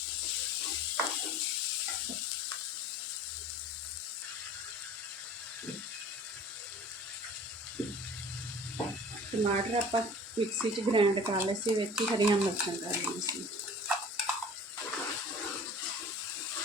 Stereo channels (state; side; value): normal; both; correlation 0.44